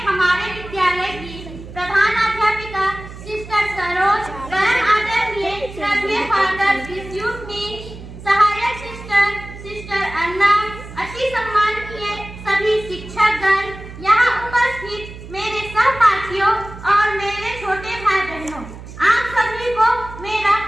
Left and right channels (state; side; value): noise; right; hum, 14 dB below the sound